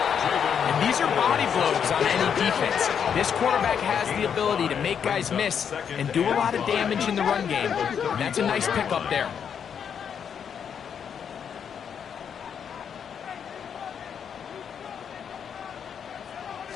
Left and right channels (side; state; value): right; quieter; 7.7 dB